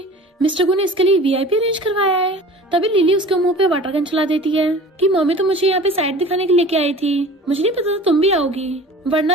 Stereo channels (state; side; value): normal; both; correlation 0.42